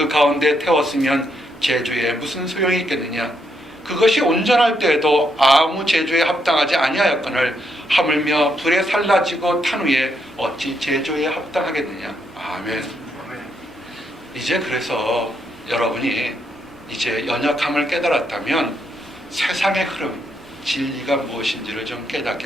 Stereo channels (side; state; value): both; normal; correlation 0.77